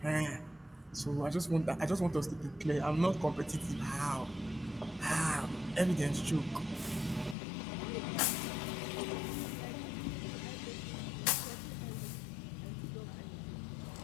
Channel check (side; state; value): right; drops out; at 7.4 s